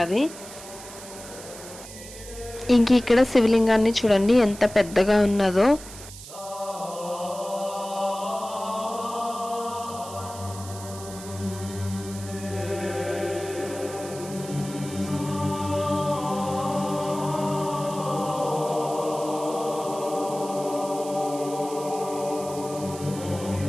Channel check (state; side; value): noise; right; hiss, 14 dB below the sound